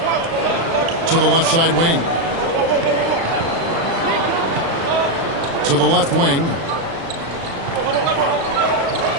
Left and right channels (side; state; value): left; late; 36 ms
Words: To the left side wing. To the left wing.